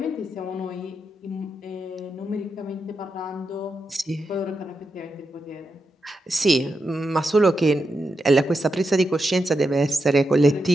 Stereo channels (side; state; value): both; normal; correlation 0.86